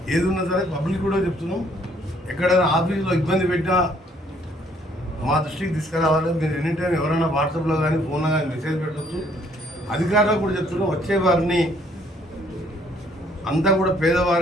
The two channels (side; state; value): both; normal; correlation 0.64